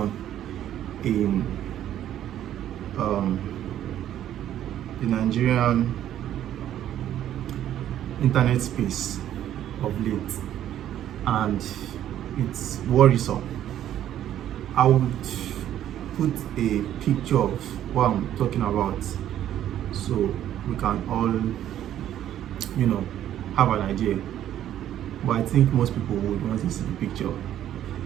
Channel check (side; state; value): left; quieter; 11.5 dB